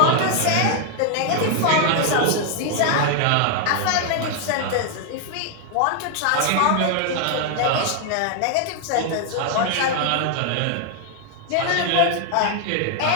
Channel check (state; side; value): different; both; correlation 0.00